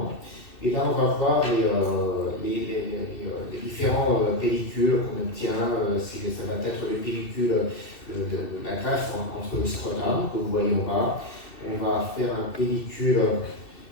Et là, on va voir les différents pellicules qu'on obtient. Ça va être les pellicules de la greffe entre le scrotum, que vous voyez en bas. On va faire un pellicule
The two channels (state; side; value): late; right; 2.7 ms